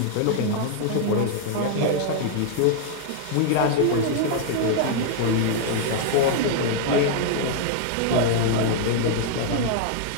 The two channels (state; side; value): different; both; correlation 0.00